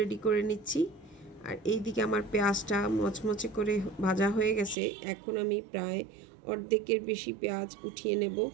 করে নিচ্ছি। আর এইদিকে আমার পেঁয়াজটা মচমচে করে ভাজা হয়ে গেছে। এখন আমি প্রায় অর্ধেকের বেশি পেঁয়াজ উঠিয়ে নেব।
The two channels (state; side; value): drops out; left; at 4.8 s